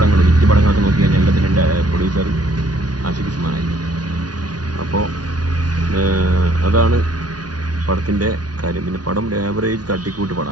ഹിറ്റ് പടങ്ങളൊക്കെ നോക്കി കഴിഞ്ഞാൽ എല്ലാത്തിൻ്റെ പ്രൊഡ്യൂസർ ആഷിഖ് ഉസ്മാനായിരുന്നു. അപ്പോൾ അതാണ് പടത്തിൻ്റെ കാര്യം. പിന്നെ പടം ആവറേജ് തട്ടിക്കൂട്ട്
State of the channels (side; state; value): left; late; 0.69 ms